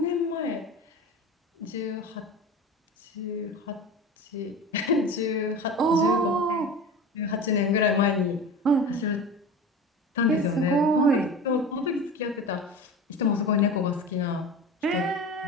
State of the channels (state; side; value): normal; both; correlation 0.32